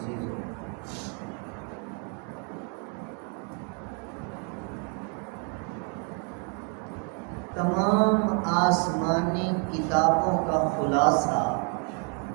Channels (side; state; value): left; quieter; 38.3 dB